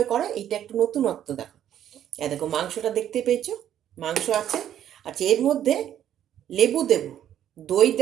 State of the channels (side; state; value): left; quieter; 10.7 dB